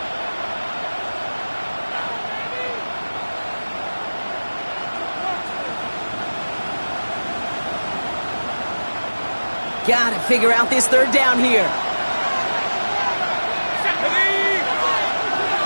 Gotta figure out this 3rd down here.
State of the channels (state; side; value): inverted; both; correlation -1.00